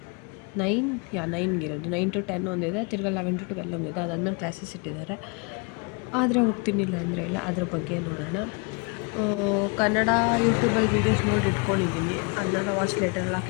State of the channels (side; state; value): right; quieter; 32.3 dB